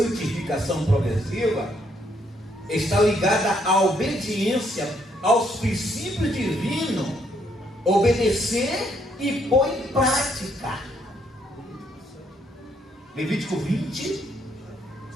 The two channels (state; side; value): normal; both; correlation 0.71